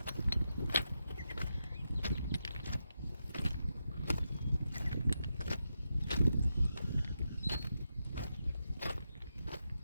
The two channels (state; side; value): inverted; both; correlation -0.87